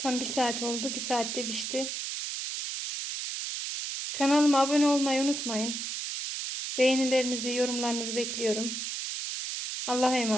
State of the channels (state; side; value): noise; right; hiss, 4 dB below the sound